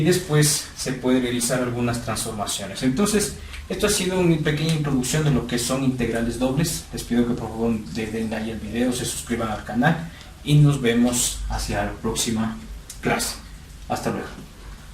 después se puede realizar algunas transformaciones. Entonces esto ha sido una pequeña introducción de lo que son integrales dobles. Les pido que por favor le den like al video, se suscriban al canal y nos vemos hacia la próxima clase. Hasta luego.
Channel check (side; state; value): both; identical; correlation 1.00